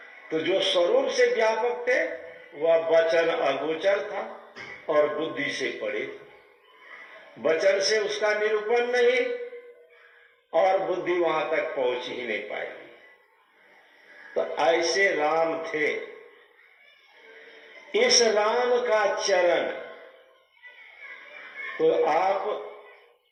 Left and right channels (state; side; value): identical; both; correlation 1.00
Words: तो जो स्वरूप से व्यापक थे वह वचन अगोचर था और बुद्धि से परे था। वचन से उसका निरूपण नहीं, और बुद्धि वहां तक पहुंच ही नहीं पाएगी। तो ऐसे राम थे। इस राम का चरण तो आप